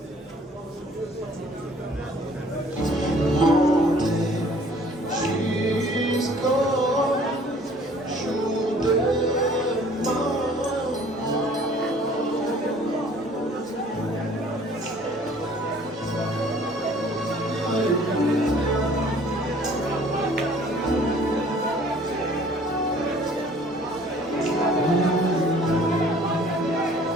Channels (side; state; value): both; normal; correlation 0.54